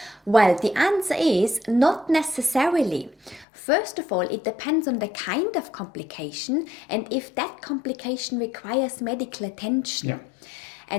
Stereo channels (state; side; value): drops out; right; at 3.5 s